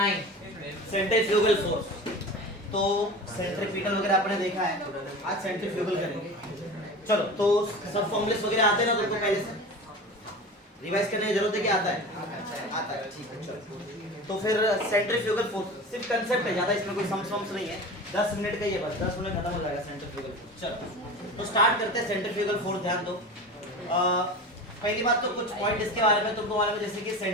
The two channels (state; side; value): normal; both; correlation 0.32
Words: सेंट्रीफ्यूगल फोर्स। तो सेंट्रीफ्यूगल वगैरह आपने देखा है, आज सेंट्रीफ्यूगल करेंगे। चलो तो सब फॉर्मूलेस वगैरह आते हैं ना तुमको, पहले से रिवाइज करने की जरूरत है कि आता है? आता है, ठीक है। चलो तो फिर सेंट्रीफ्यूगल फोर्स सिर्फ कंसेप्ट है, ज्यादा इसमें कोई सम्स नहीं है, 10 मिनट का ही है बस, 10 मिनट खत्म हो जाएगा सेंट्रीफ्यूगल फोर्स। चलो तो स्टार्ट करते हैं सेंट्रीफ्यूगल फोर्स। ध्यान दो, पहली बात तो कुछ पॉइंट इसके बारे में तुमको मालूम है, जैसे कि